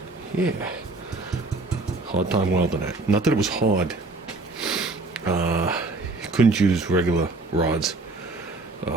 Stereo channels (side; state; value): left; quieter; 3.3 dB